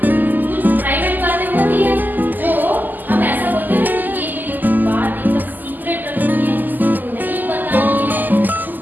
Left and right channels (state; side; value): late; left; 0.086 ms